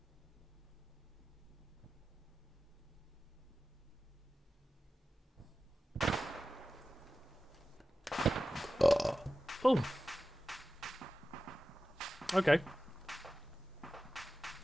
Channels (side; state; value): both; normal; correlation 0.95